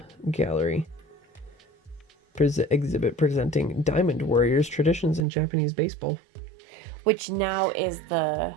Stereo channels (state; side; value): drops out; left; at 5.2 s